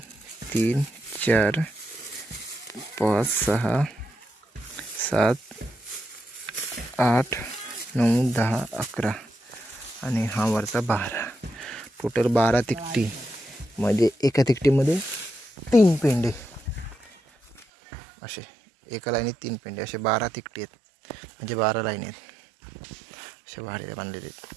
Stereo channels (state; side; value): drops out; left; at 17.7 s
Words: 3 4 5 6 7 8 9 10 11 आणि हा वरचा 12. टोटल 12 तिकटी. म्हणजे एका तिकटीमध्ये 3 पेंडे असे. एका लाईनीत 3 पेंडे असे 12 तिकटी आहेत. म्हणजे 12 लाईन आहेत. असे भारे बांधलेले आहेत.